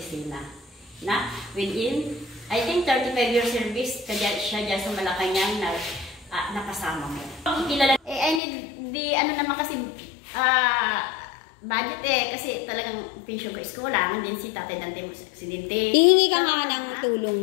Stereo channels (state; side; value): drops out; right; at 8.4 s